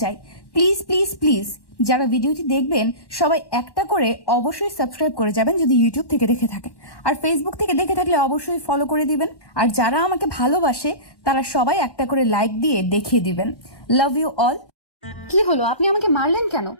চাই, প্লিজ প্লিজ প্লিজ যারা ভিডিওটি দেখবেন সবাই একটা করে অবশ্যই সাবস্ক্রাইব করে যাবেন যদি ইউটিউব থেকে দেখে থাকেন, আর ফেসবুক থেকে দেখে থাকলে অবশ্যই ফলো করে দিবেন। আর যারা আমাকে ভালোবাসে তারা সবাই একটা করে লাইক দিয়ে দেখিয়ে দিবেন। Love you all. কি হলো, আপনি আমাকে মারলেন কেন?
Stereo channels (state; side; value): late; right; 1.1 ms